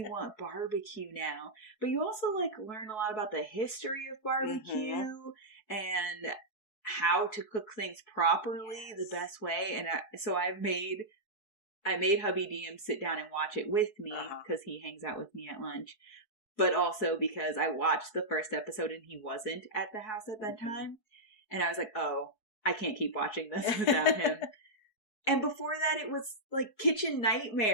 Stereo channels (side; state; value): right; late; 4.6 ms